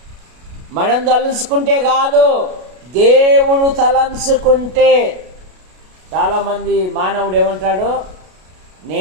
మనం తలంచుకుంటే కాదు, దేవుడు తలంచుకుంటే. చాలామంది మానవుడు ఏమంటాడు?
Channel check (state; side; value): late; left; 33 ms